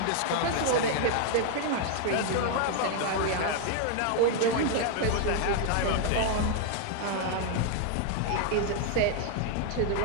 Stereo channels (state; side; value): different; both; correlation 0.00